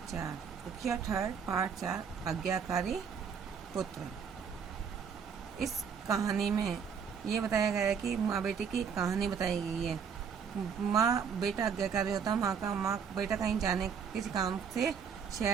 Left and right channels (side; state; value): left; quieter; 6.8 dB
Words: 4 उखिया थर्ड पाठ 4 आज्ञाकारी पुत्र। इस कहानी में ये बताया गया है कि माँ बेटे की कहानी बताई गई है। माँ बेटा आज्ञाकारी होता, माँ बेटा कहीं जाने किसी काम से